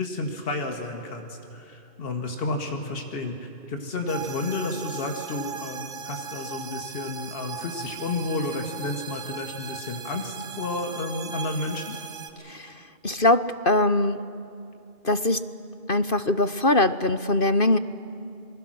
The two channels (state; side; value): late; right; 2.5 ms